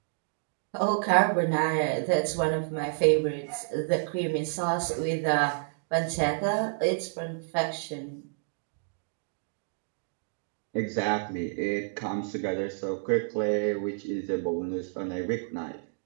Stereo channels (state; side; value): silent; left; digital silence